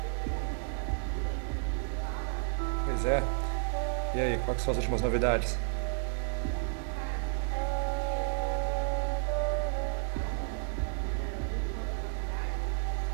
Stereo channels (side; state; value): left; silent; 56 dB below the other